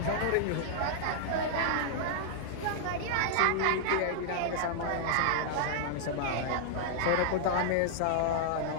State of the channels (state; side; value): different; both; correlation -0.01